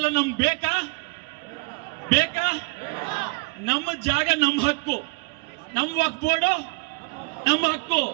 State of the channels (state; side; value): quieter; left; 28.4 dB